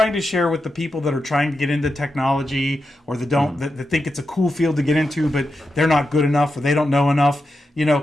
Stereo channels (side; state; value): both; normal; correlation 0.88